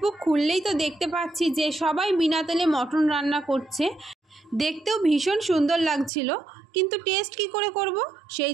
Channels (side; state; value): left; drops out; at 6.1 s